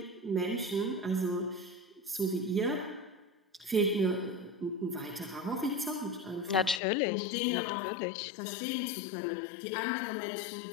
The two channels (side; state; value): right; drops out; at 6.8 s